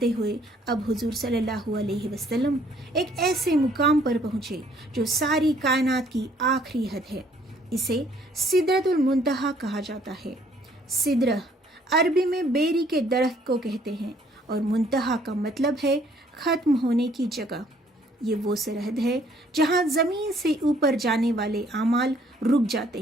ہوئے اب حضور صلی اللہ علیہ وسلم ایک ایسے مقام پر پہنچے جو ساری کائنات کی آخری حد ہے۔ اسے سدرۃ المنتہا کہا جاتا ہے۔ سدرہ عربی میں بیری کے درخت کو کہتے ہیں اور منتہا کا مطلب ہے ختم ہونے کی جگہ۔ یہ وہ سرحد ہے جہاں زمین سے اوپر جانے والے اعمال رک جاتے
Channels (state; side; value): normal; both; correlation 0.62